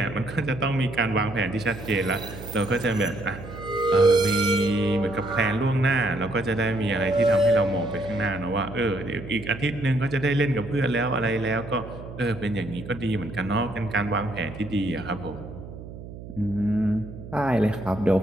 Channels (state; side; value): noise; right; hum, 13 dB below the sound